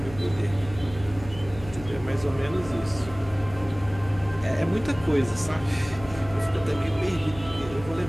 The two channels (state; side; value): noise; left; hum, 15 dB below the sound